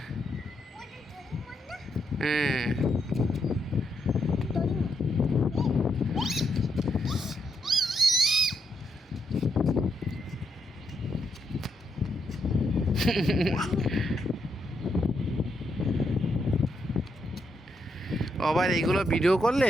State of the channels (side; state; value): both; normal; correlation 0.79